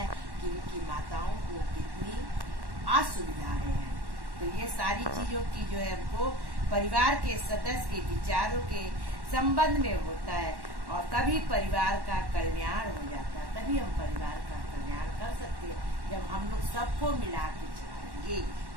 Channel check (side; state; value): left; late; 1.1 ms